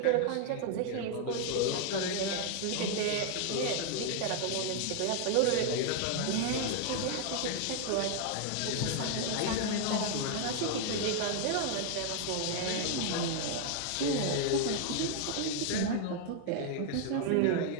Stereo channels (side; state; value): both; different; correlation 0.00